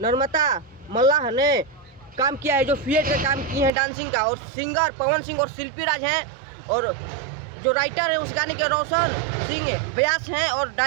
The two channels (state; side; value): drops out; left; at 3.7 s